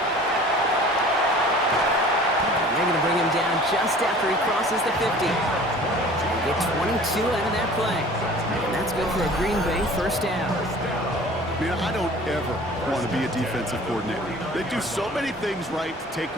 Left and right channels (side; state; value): both; normal; correlation 0.46